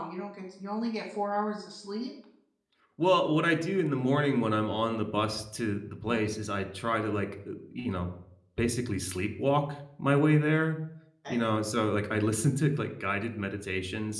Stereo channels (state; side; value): identical; both; correlation 1.00